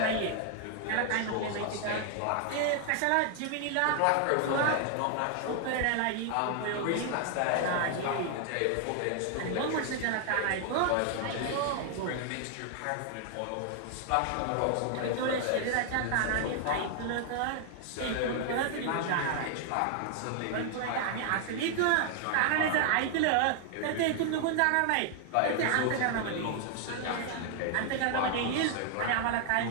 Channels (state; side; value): different; both; correlation 0.00